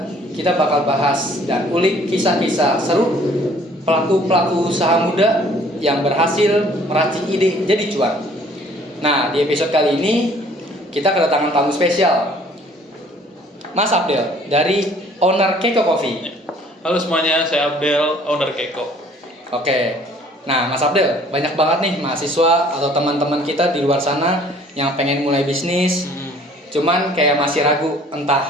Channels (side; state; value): both; normal; correlation 0.56